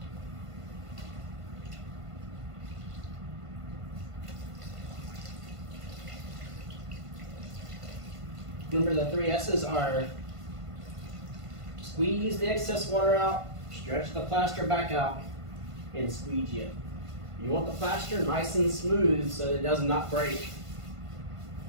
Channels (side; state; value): left; late; 1.5 ms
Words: Remember, the 3 S's are: squeeze the excess water out, stretch the plaster back out, and squeegee it. You want the plaster nice and smooth so that it does not break.